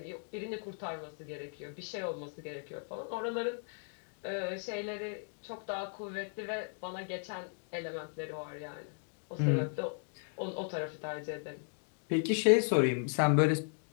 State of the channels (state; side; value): silent; right; 54 dB below the other